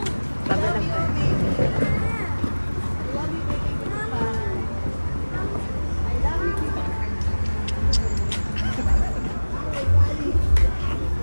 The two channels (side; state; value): both; inverted; correlation -1.00